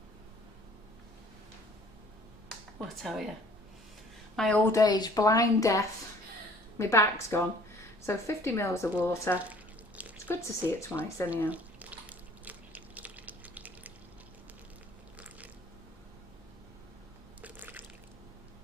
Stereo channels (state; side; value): normal; both; correlation 0.53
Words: well, I tell you, my old age, blind death, my back's gone. So 50 mils of water. It's good to see it twice anyhow.